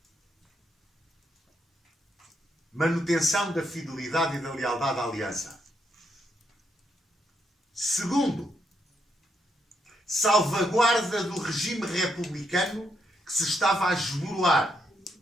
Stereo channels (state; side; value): normal; both; correlation 0.78